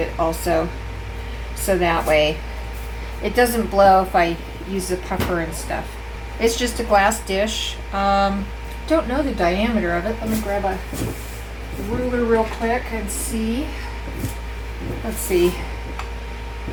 also, so that way it doesn't blow if I use the puffer and stuff. It's just a glass dish. Don't know the diameter of it. Let me grab a ruler real quick and see. Let's see.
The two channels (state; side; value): identical; both; correlation 1.00